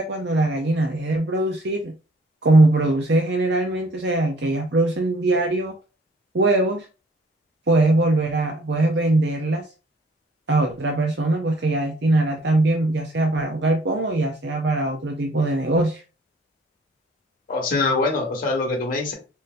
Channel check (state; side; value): normal; both; correlation 0.59